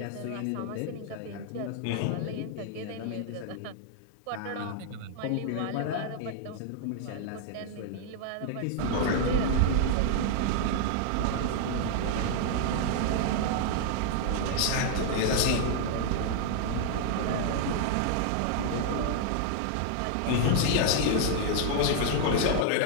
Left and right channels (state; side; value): different; both; correlation 0.00